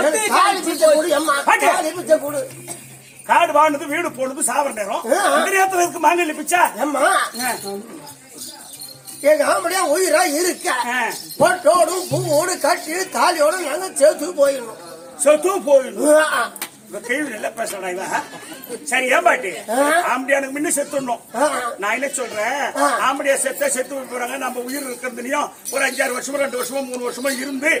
காடு வாங்கினது வீடு போனது சாவர நேரம் இந்த நேரத்துல இருக்கு மாங்கல்ய பிச்சா எங்க ஆம்படியா உயிரா இருக்க பொட்டோடும் பூவோடு கட்டி தாலியோட நாங்க சேர்த்து போயிடணும் செத்து போயிடும் கேள்வி நல்லா பேசுறா இவ. சரி ஏன் பாட்டி ஆம்படியானுக்கு முன்ன செத்துடணும். நான் என்ன சொல்றேன், ஆம்படியா செத்து போறாங்க. நம்ம உயிர் இருக்கிறதுலயும் ஒரு 5-6 வருஷமோ 2 வருஷமோ 3 வருஷமோ இருந்து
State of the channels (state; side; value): identical; both; correlation 1.00